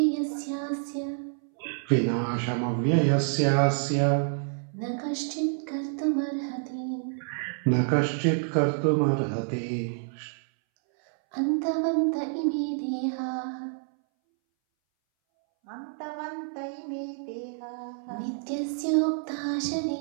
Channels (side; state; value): left; silent; 59 dB below the other